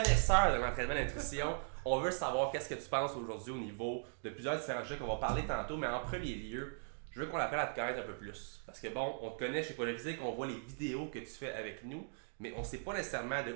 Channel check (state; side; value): silent; left; digital silence